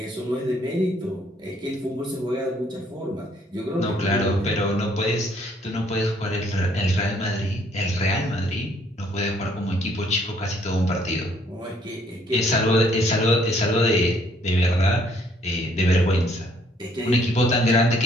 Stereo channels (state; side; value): normal; both; correlation 0.64